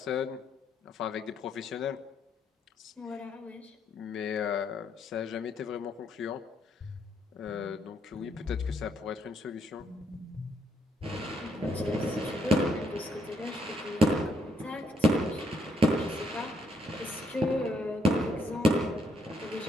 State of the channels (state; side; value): normal; both; correlation 0.73